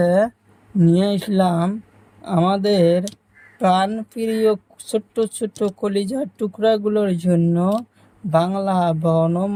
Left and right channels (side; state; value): both; identical; correlation 1.00